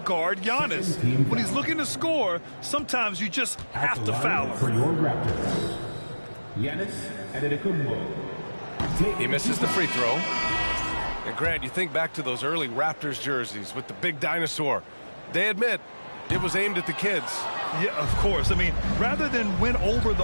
Giannis? When he's looking to score, sometimes you just have to foul him. For your Raptors, Giannis Antetokounmpo. He misses the free throw. And Grant, you think back to those early Raptors jerseys with the big dinosaur. They admit it was aimed at the kids. Yeah, of course. I mean, rather than win over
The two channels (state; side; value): inverted; both; correlation -1.00